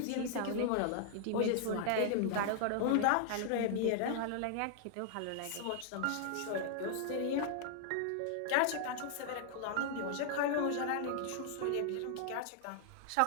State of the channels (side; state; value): both; different; correlation -0.01